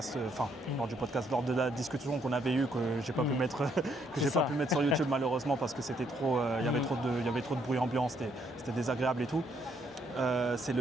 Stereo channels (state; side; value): normal; both; correlation 0.71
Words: lors de la discussion qu'on avait eue, que j'ai pas pu mettre, sur YouTube malheureusement parce que c'était trop, il y avait trop de bruit ambiant, c'était désagréable et tout. C'est